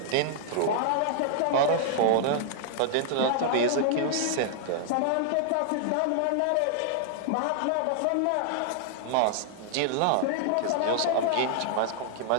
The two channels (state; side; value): different; both; correlation -0.01